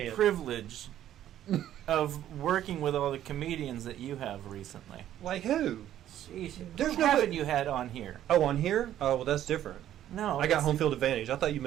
privilege of working with all the comedians that you have recently. Like who? Sheesh. There's Who no haven't way- you had on here? Oh, on here? Oh, well, that's different. No, I got that's- home field advantage. I thought you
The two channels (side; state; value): left; quieter; 11.8 dB